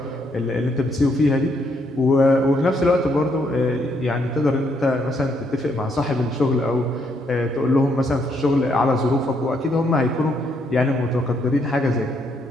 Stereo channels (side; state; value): both; normal; correlation 0.73